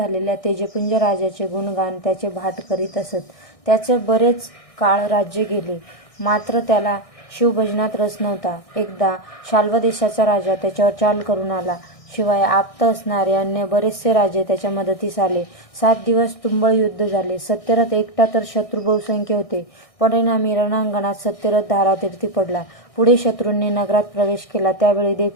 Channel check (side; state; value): right; late; 1.6 ms